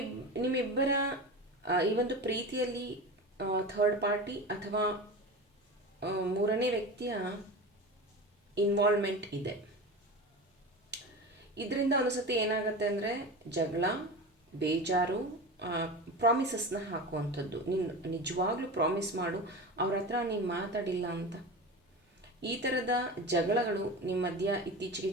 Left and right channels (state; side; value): normal; both; correlation 0.28